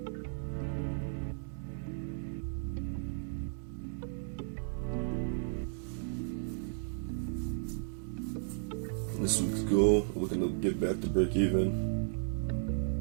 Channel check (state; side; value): silent; left; digital silence